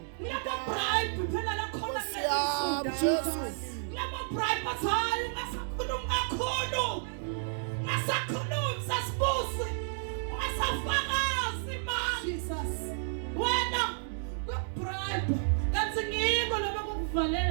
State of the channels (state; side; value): silent; left; digital silence